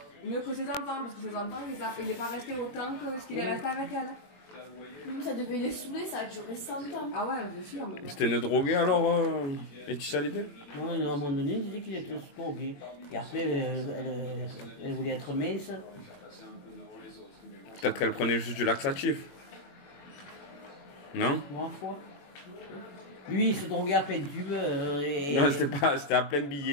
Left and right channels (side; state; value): right; late; 21 ms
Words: mieux que ses enfants, parce que ses enfants, il n'est pas resté autant que ce qu'il est resté avec elle. Ça devait les saouler, ça a duré 100 ans. Ah ouais, bien sûr. C'était une droguée alors, Laetitia Hallyday? Ouais, à un moment donné, il disait qu'il était drogué. Et après, elle voulait être mince. Peut-être qu'elle prenait juste du laxatif. Non? Ma foi. Lui, il se droguait à plein tube. Non, c'était à plein